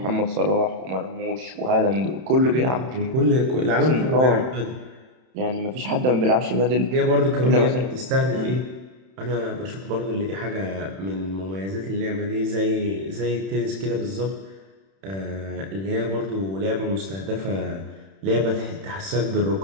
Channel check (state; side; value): late; left; 31 ms